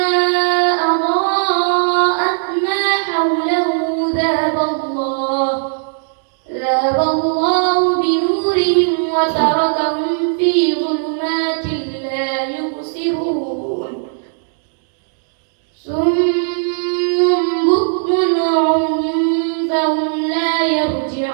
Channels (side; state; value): left; silent; digital silence